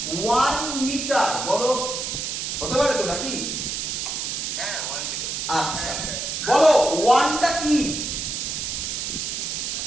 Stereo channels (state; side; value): noise; right; hiss, 3 dB below the sound